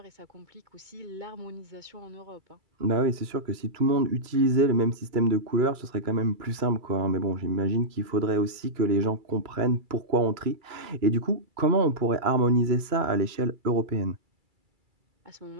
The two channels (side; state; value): left; late; 2.3 ms